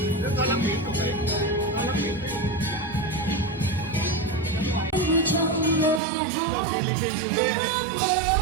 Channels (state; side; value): drops out; left; at 6.0 s